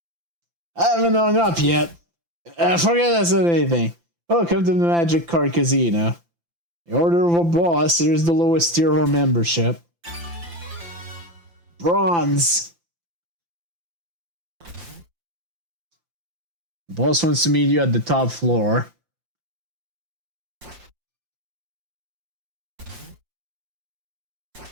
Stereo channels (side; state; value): left; late; 5.9 ms